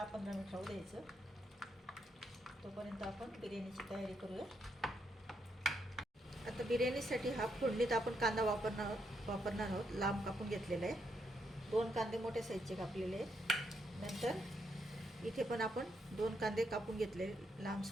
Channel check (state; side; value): normal; both; correlation 0.78